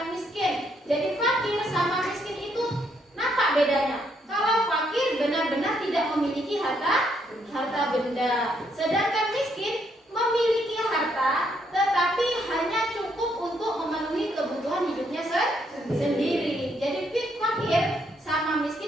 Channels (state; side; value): normal; both; correlation 0.73